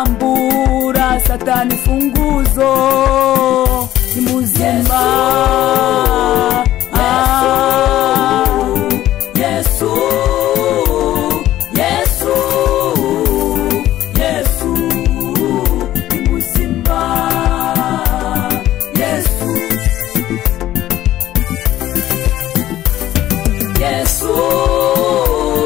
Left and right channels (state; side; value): quieter; right; 13.7 dB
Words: satani funguzo ni muzima Yesu Yesu Yesu ni muzima Yesu Yesu